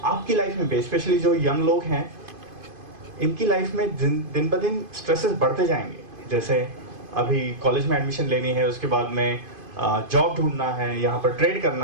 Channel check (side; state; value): left; late; 2.5 ms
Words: आपकी लाइफ में स्पेशली जो यंग लोग हैं, इनकी लाइफ में दिन ब दिन स्ट्रेसेस बढ़ते जाएंगे। जैसे अभी कॉलेज में एडमिशन लेनी है, उसके बाद में जॉब ढूंढना है, यहाँ पर ट्रेड